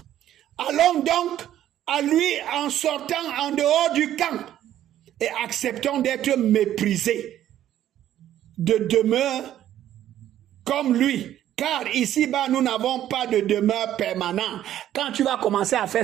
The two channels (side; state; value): left; quieter; 11.9 dB